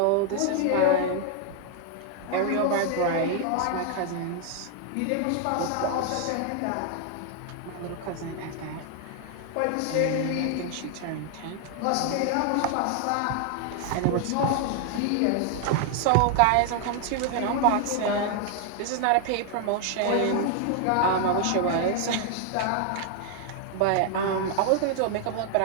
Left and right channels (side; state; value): both; different; correlation 0.00